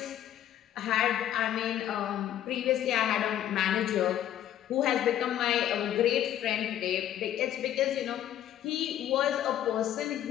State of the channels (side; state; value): right; quieter; 11.5 dB